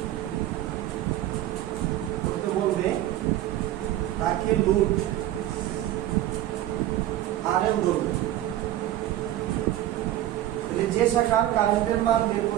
তাকে লোড আরএল ধরবে। যে শাখার কারেন্টের মান বের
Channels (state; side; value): quieter; left; 13.6 dB